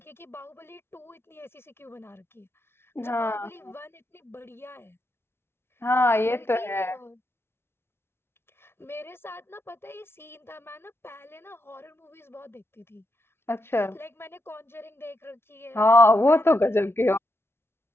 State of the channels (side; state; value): right; late; 0.12 ms